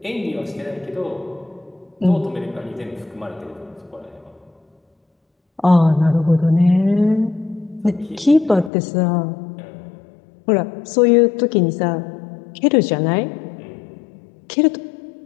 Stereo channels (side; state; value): right; drops out; at 8.7 s